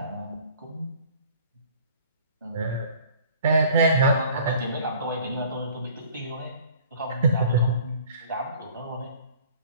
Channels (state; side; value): inverted; both; correlation -0.50